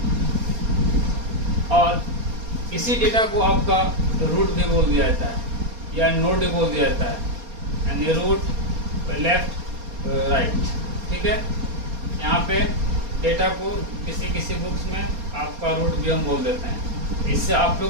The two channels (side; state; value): left; late; 4.3 ms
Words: और इसी डेटा को आपका रूट भी बोल दिया जाता है या नोड भी बोल दिया जाता है, यानी रूट लेफ्ट राइट, ठीक है। यहाँ पे डेटा को किसी बुक्स में आपका रूट भी हम बोल देते हैं, इससे आप